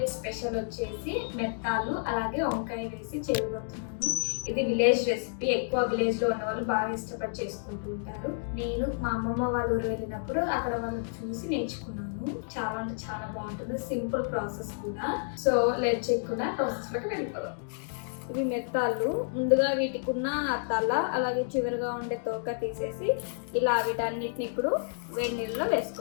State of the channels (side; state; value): right; silent; digital silence